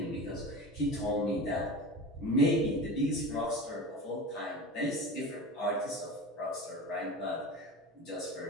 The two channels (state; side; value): normal; both; correlation 0.31